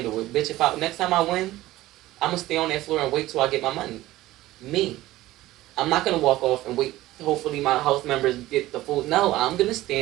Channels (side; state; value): left; quieter; 16.5 dB